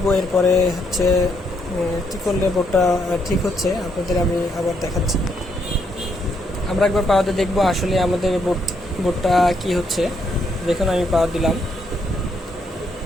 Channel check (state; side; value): normal; both; correlation 0.75